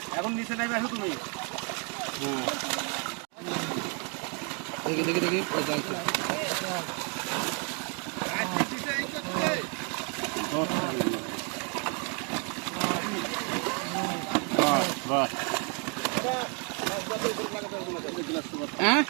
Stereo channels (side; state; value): left; quieter; 36.8 dB